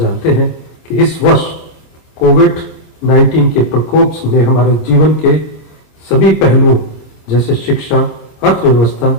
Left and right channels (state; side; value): late; right; 26 ms